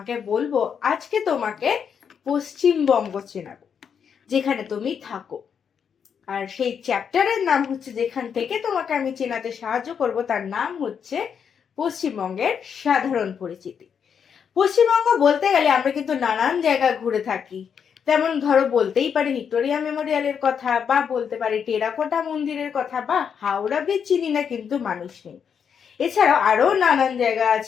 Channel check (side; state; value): right; quieter; 7.3 dB